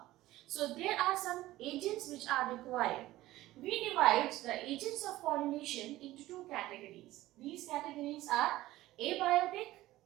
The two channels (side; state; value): left; quieter; 16.4 dB